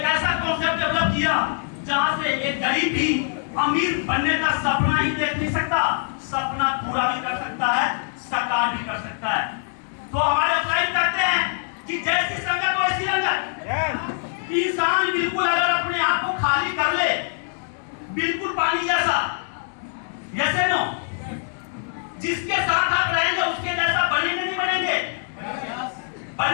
ऐसा कॉन्सेप्ट डेवलप किया जहां से एक गरीब भी अमीर बनने का सपना ही देख नहीं सकता, सपना पूरा भी कर सकता है, साकार भी कर सकता है। तो हमारे क्लाइंट कहते हैं कि जैसी संगत वैसी रंगत। इंसान बिल्कुल अगर अपने आप को खाली कर ले, बिल्कुल पानी जैसा, जैसे नो, जिसके साथ आप रहेंगे उसके जैसा बनेंगे नहीं बनेंगे?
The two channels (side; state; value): right; silent; 63 dB below the other